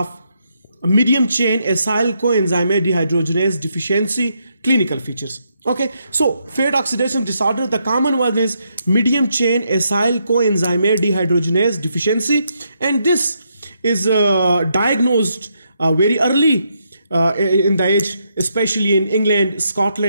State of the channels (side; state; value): both; inverted; correlation -0.78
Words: medium chain acyl coenzyme dehydrogenase deficiency clinical features. Okay, so fat oxidation disorder, the common one is medium chain acyl coenzyme dehydrogenase deficiency, and this is diagnosed very early in the age, especially in England,